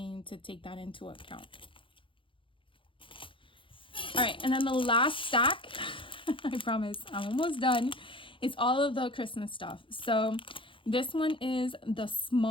to take that into account. All right, and then the last stack, I promise I'm almost done. It's all of the Christmas stuff. So this one is the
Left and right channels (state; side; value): late; right; 0.25 ms